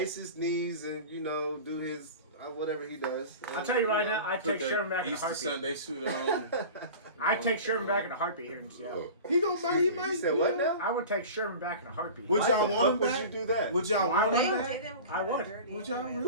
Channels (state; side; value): inverted; both; correlation -0.36